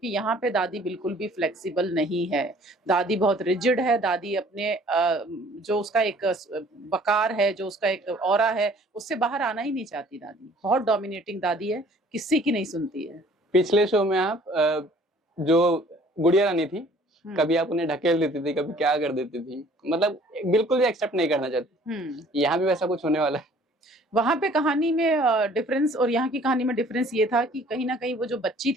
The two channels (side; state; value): both; normal; correlation 0.54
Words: यहाँ पे दादी बिल्कुल भी फ्लेक्सिबल नहीं है। दादी बहुत रिजिड है। दादी अपने जो उसका एक वकार है, जो उसका एक ऑरा है, उससे बाहर आना ही नहीं चाहती। दादी बहुत डोमिनेटिंग दादी है, किसी की नहीं सुनती है। पिछले शो में आप जो गुड़िया रानी थी, कभी आप उन्हें ढकेल देती थी, कभी क्या कर देती थी, मतलब बिल्कुल भी एक्सेप्ट नहीं करना चाहती। यहाँ भी वैसा कुछ होने वाला है? वहां पे कहानी में डिफरेंस और यहाँ की कहानी में डिफरेंस ये था कि कहीं ना कहीं वो जो बच्ची